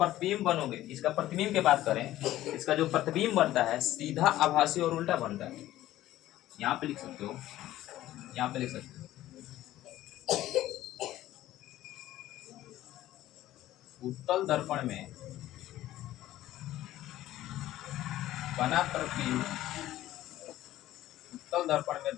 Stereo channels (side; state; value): right; quieter; 14.5 dB